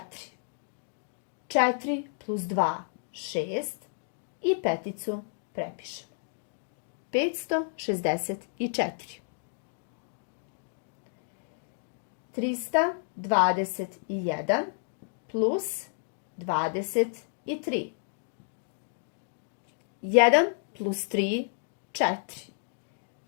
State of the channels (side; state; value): right; silent; digital silence